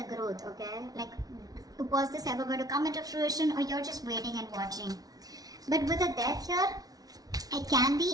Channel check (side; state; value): left; late; 0.18 ms